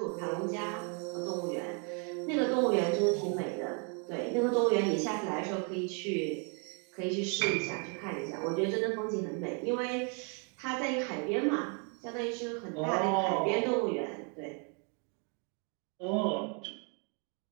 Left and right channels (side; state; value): left; quieter; 37.2 dB